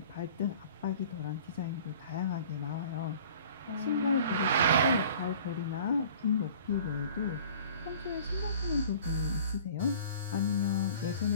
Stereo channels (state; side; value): inverted; both; correlation -0.47